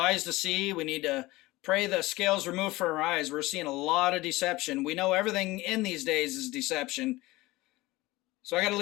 to see. We need to pray the scales removed from our eyes. We're seeing a lot of deception. We know everything in these days is deception. So I got to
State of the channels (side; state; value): right; quieter; 20.1 dB